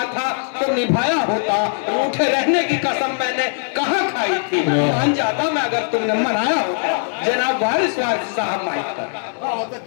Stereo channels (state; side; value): silent; right; 61 dB below the other